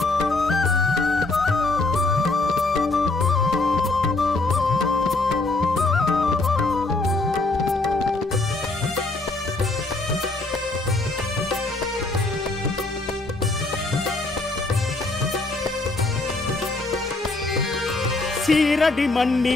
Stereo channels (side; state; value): right; quieter; 3.2 dB